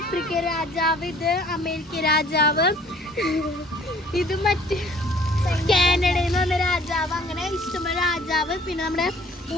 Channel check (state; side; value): normal; both; correlation 0.55